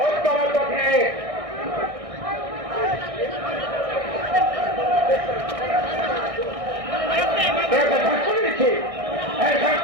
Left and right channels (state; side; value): late; left; 1.6 ms